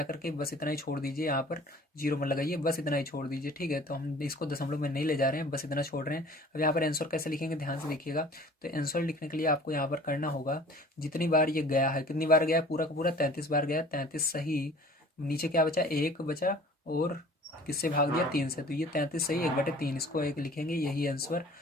करके बस इतना ही छोड़ दीजिए, यहाँ पर 0 मत लगाइए, बस इतना ही छोड़ दीजिए। ठीक है, तो हम इसको दशमलव में नहीं ले जा रहे हैं, बस इतना छोड़ रहे हैं। अब यहाँ पर आंसर कैसे लिखेंगे, ध्यान से देखिएगा। तो आंसर लिखने के लिए आपको यहाँ पर करना होगा, जितनी बार ये गया है, कितनी बार गया है, पूरा का पूरा 33 बार गया, 33 सही। नीचे क्या बचा, 1 बचा, और किससे भाग दिया, 3 से, तो ये 33 सही 1/3, इसको 1 लिखेंगे, यही आंसर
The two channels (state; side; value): normal; both; correlation 0.48